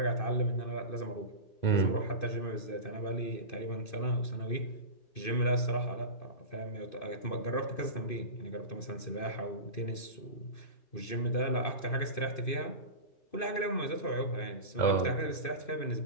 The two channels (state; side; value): late; right; 2.5 ms